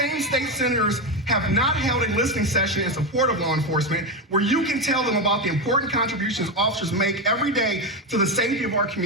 state senators have not held a listening session in support of law enforcement where you can tell them about the important contributions officers make every day to the safety of our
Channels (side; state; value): both; normal; correlation 0.12